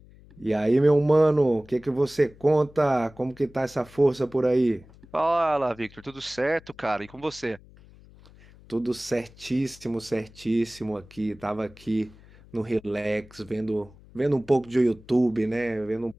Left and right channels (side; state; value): left; noise; hum, 24 dB below the sound